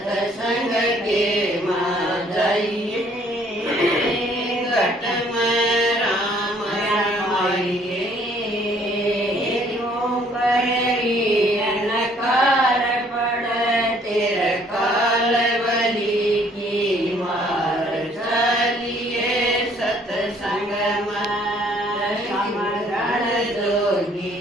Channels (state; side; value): normal; both; correlation 0.61